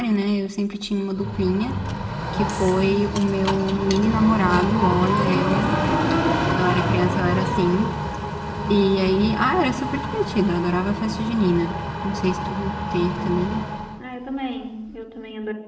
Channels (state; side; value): identical; both; correlation 1.00